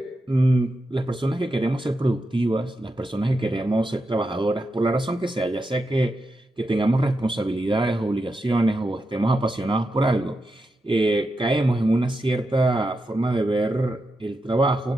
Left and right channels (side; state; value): both; normal; correlation 0.87